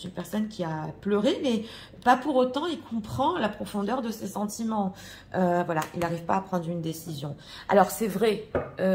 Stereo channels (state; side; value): identical; both; correlation 1.00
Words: une personne qui a pleuré, mais pas pour autant, il comprend la profondeur de ses sentiments. Voilà, il n'arrive pas à prendre une décision. Alors, c'est vrai